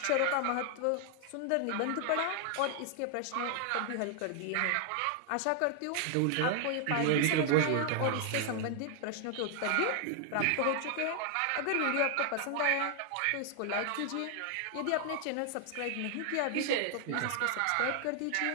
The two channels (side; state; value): both; different; correlation 0.00